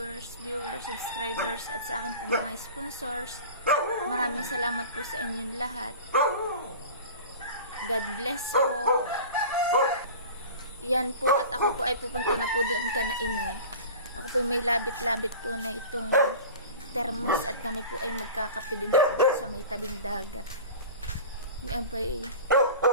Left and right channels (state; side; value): inverted; both; correlation -0.37